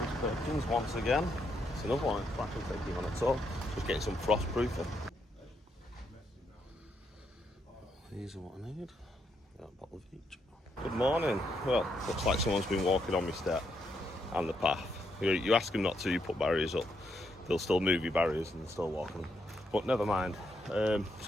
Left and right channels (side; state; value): both; normal; correlation 0.78